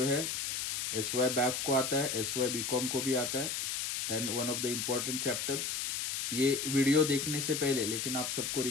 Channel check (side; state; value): left; noise; hiss, 2 dB below the sound